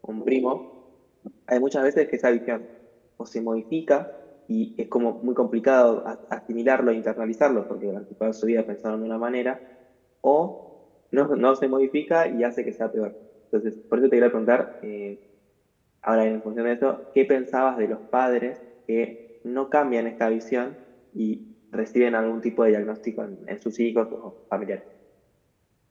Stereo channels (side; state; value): both; identical; correlation 1.00